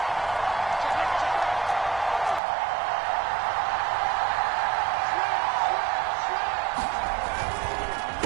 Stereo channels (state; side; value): drops out; left; at 2.4 s